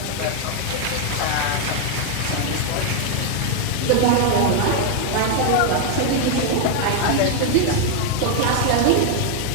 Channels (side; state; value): both; different; correlation 0.00